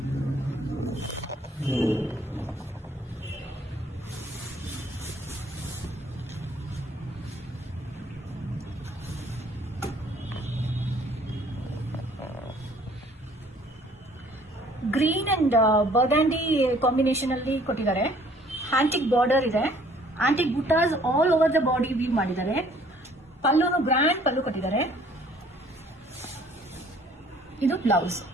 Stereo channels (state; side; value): normal; both; correlation 0.58